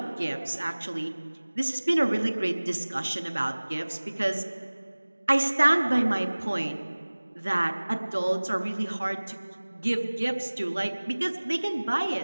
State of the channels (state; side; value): inverted; both; correlation -1.00